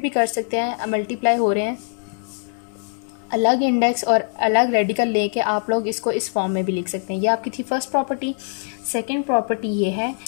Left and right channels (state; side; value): silent; right; 57 dB below the other